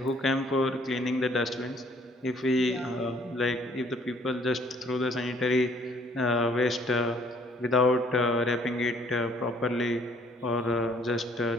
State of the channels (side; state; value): both; normal; correlation 0.61